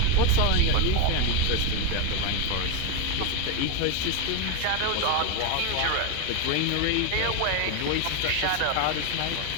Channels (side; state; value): both; different; correlation 0.02